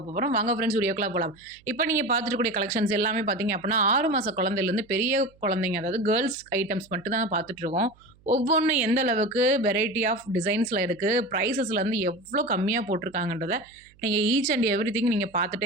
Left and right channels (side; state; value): right; noise; hum, 30 dB below the sound